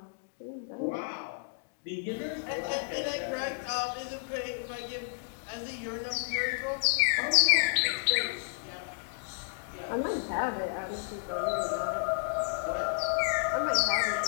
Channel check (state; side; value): silent; right; digital silence